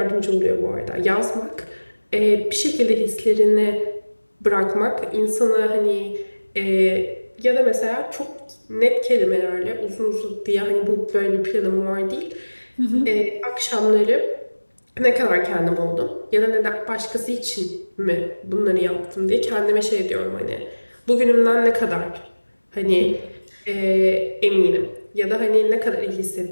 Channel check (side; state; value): both; inverted; correlation -1.00